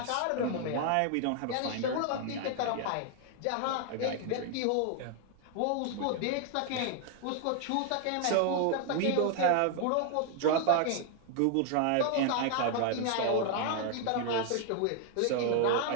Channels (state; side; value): different; both; correlation 0.00